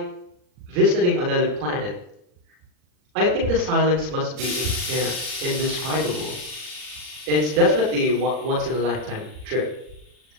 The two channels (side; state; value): left; late; 40 ms